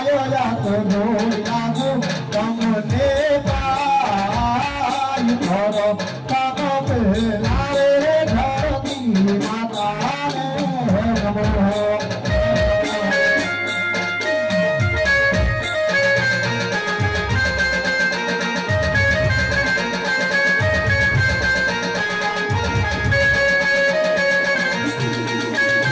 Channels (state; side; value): identical; both; correlation 1.00